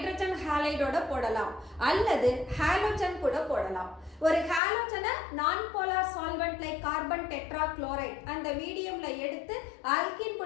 ஹாலைடோட போடலாம் அல்லது halogen கூட போடலாம். ஒரு ஹாலோஜனை நான் polar solvent like carbon tetrachloride அந்த மீடியம்ல எடுத்து ஆல்கீன்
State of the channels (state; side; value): drops out; right; at 4.6 s